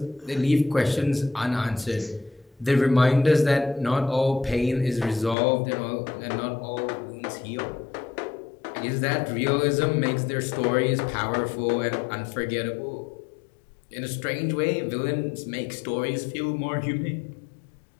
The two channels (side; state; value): right; drops out; at 5.4 s